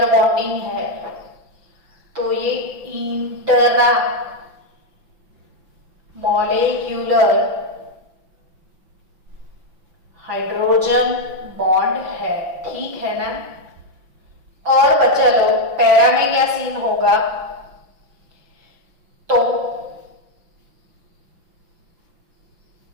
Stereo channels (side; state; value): left; late; 5.9 ms